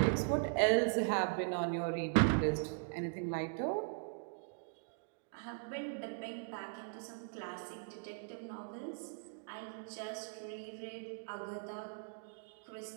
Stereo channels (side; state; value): left; silent; digital silence